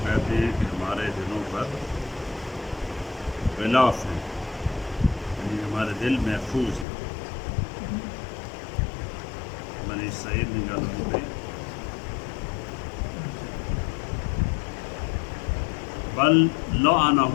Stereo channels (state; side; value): drops out; right; at 6.9 s